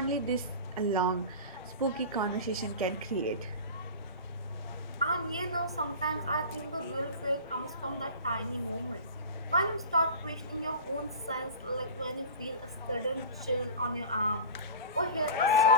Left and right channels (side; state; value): both; inverted; correlation -0.33